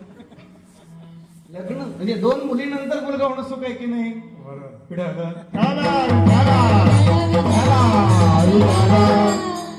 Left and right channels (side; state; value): both; identical; correlation 1.00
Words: लग्न म्हणजे 2 मुलीनंतर मुलगा होणं सुख आहे की नाही?